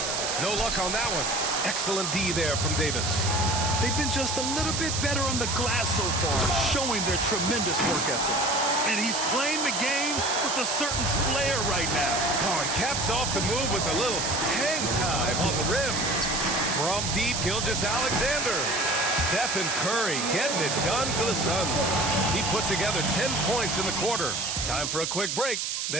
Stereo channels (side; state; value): right; noise; hiss, 1 dB below the sound